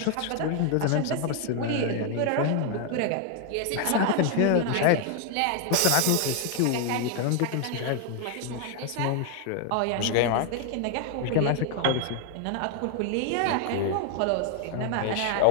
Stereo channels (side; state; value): both; different; correlation 0.00